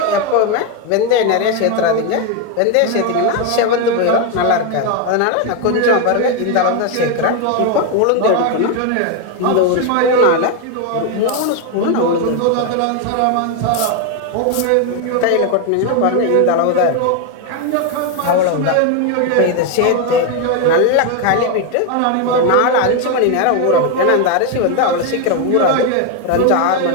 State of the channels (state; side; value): different; both; correlation 0.01